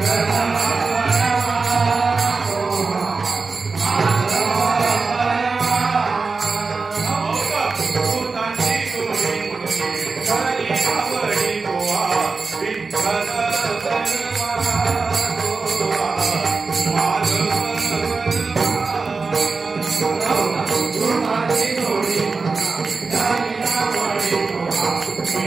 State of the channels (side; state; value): left; quieter; 4.3 dB